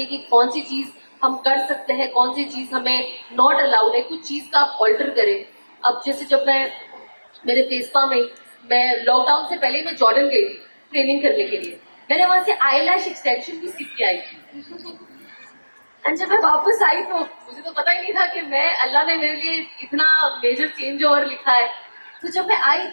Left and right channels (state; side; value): inverted; both; correlation -1.00